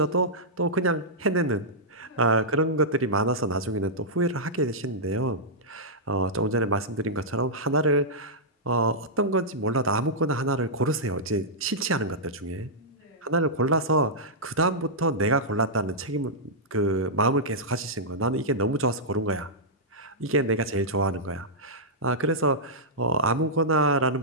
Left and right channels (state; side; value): normal; both; correlation -0.11